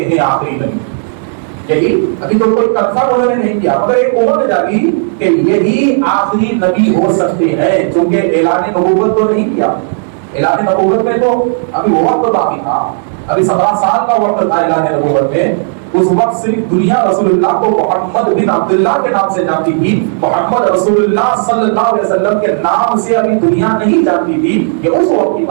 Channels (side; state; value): left; silent; digital silence